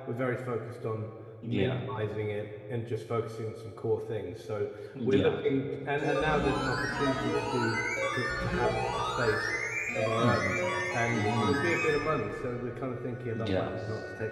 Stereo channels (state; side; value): identical; both; correlation 1.00